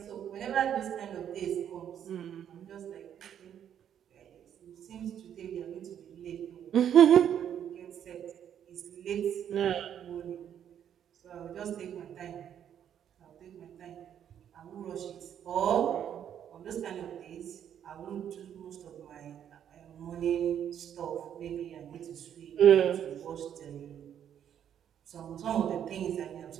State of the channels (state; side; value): quieter; left; 9.4 dB